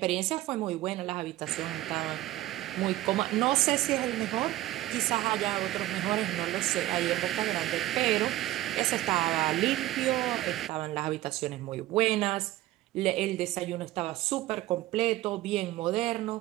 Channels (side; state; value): left; quieter; 15.9 dB